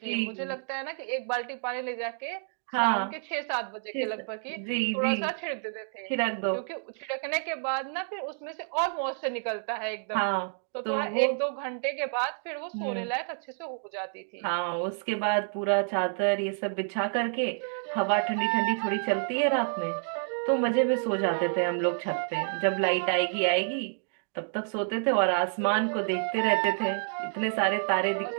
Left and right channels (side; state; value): left; silent; 58 dB below the other